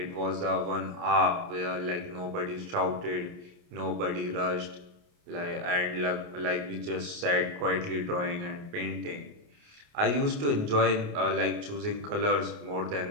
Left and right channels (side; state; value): left; late; 28 ms